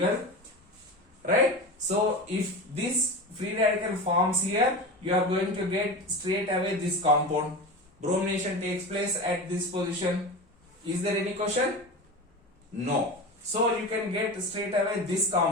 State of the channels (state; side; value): normal; both; correlation 0.27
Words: right? So if this free radical forms here, you are going to get straight away this compound. Bromination takes place at this position. Is there any question? No. So you can get straight away this